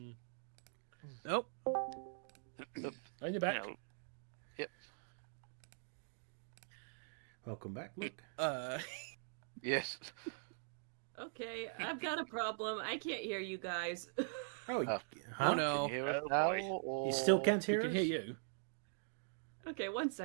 Nope. Are you back? Yep. Welcome back, Luke. Yes. Okay, I've got a problem. I can't hear you guys. Oh, Oh. huh? No. Hear it now, or... You still can't We hear can us? hear you. Okay, 1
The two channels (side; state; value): left; silent; digital silence